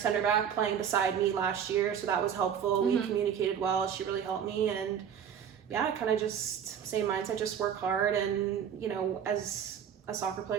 back playing beside me last year, so that was helpful. We communicated well. She really helped me, and yeah, kind of just same mindset, just work hard. And you know, as a soccer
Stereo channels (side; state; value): left; quieter; 8.3 dB